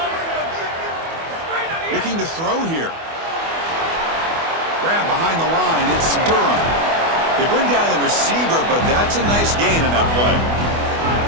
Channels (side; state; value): left; late; 24 ms